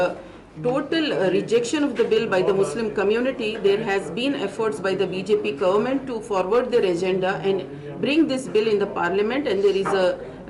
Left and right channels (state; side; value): identical; both; correlation 1.00